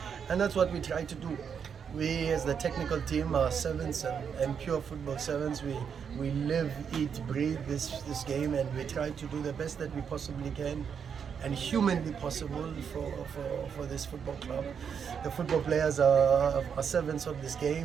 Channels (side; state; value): left; quieter; 7.1 dB